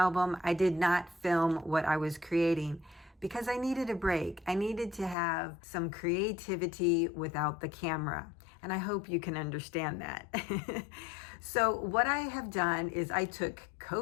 I did not film what I was creating because I needed a break. I needed to have some creativity without the camera. And I hope you can understand that. So what I have done is I took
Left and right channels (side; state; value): right; drops out; at 5.2 s